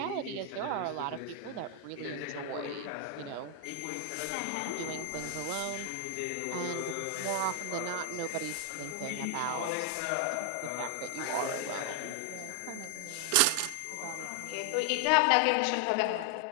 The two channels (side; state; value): both; different; correlation 0.00